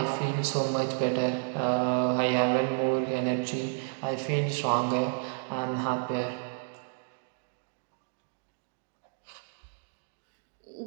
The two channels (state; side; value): silent; left; 57 dB below the other